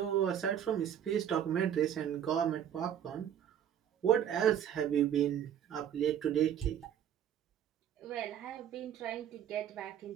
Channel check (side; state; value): left; quieter; 9.6 dB